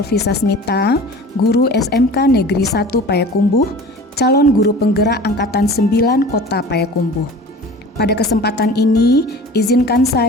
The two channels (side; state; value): both; normal; correlation 0.40